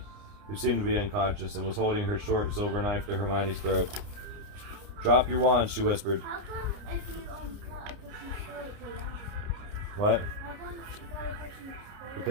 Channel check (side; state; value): left; late; 29 ms